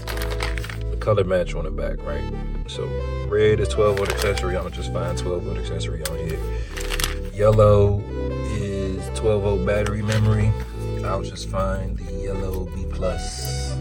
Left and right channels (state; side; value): identical; both; correlation 1.00